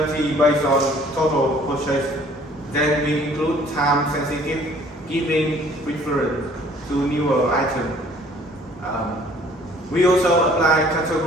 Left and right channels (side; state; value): both; normal; correlation 0.56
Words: based on total purchase. Then we include time-sensitive, giving preference to newer items. We also apply